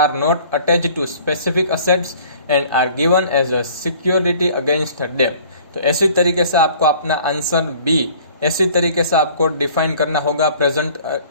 not attached to specific assets and are given as a security against debt. तो ऐसी तरीके से आपको अपना आंसर बी ऐसी तरीके से आपको डिफाइन करना होगा, प्रेजेंट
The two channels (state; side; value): inverted; both; correlation -0.52